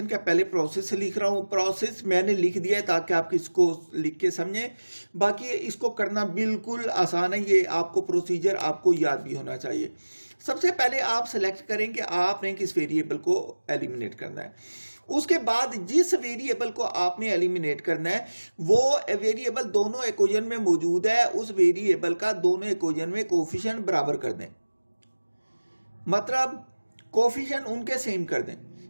का पहले प्रोसेस लिख रहा हूँ, प्रोसेस मैंने लिख दिया है ताकि आप इसको लिख के समझें। बाकी इसको करना बिल्कुल आसान है, ये आपको प्रोसीजर आपको याद भी होना चाहिए। सबसे पहले आप सेलेक्ट करें कि आपने किस वेरिएबल को एलिमिनेट करना है। उसके बाद जिस वेरिएबल को आपने एलिमिनेट करना है वो वेरिएबल दोनों इक्वेशन में मौजूद है, उस वेरिएबल का दोनों इक्वेशन में कोफिशिएंट बराबर कर दें, मतलब कोफिशिएंट उनके सेम कर दें।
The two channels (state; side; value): inverted; both; correlation -1.00